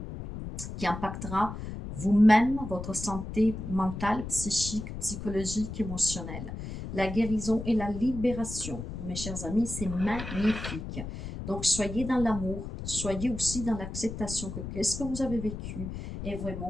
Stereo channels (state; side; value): noise; left; rumble, 8 dB below the sound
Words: qui impactera vous-même, votre santé mentale, psychique, psychologique, émotionnelle. La guérison et la libération, mes chers amis, c'est magnifique. Donc, soyez dans l'amour, soyez aussi dans l'acceptation que qu'est-ce que vous avez vécu est